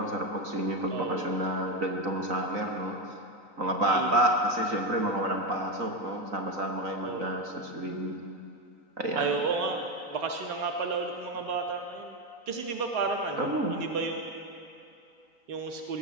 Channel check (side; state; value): left; late; 3.9 ms